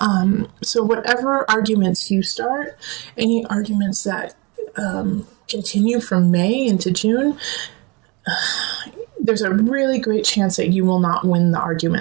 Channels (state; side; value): quieter; left; 27.6 dB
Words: So whatever arguments you start, any arguments that continue from May into June, there's a really great chance that you will not win the